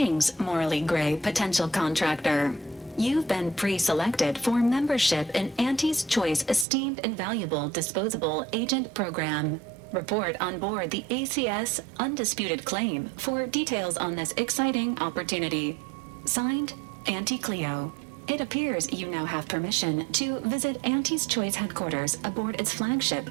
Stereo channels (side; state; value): left; drops out; at 6.7 s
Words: morally gray potential contractor. You've been pre-selected for membership in Auntie's Choice Esteemed and Valuable Disposable Agent Program. Report on board the ACS Undisputed Claim for details on this exciting opportunity. Signed, Auntie Cleo. It appears you now have permission to visit Auntie's Choice headquarters aboard its